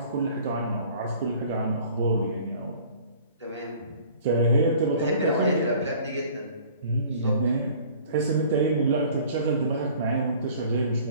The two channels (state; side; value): inverted; both; correlation -0.50